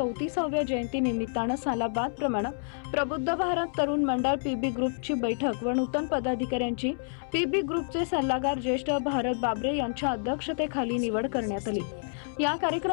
जयंती निमित्तानं सालाबाद प्रमाणे प्रबुद्ध भारत तरुण मंडळ पीबी ग्रुपची बैठक व नूतन पदाधिकाऱ्यांची पीबी ग्रुपचे सल्लागार ज्येष्ठ भारत बाबरे यांच्या अध्यक्षतेखाली निवड करण्यात आली. या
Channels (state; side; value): silent; right; 59 dB below the other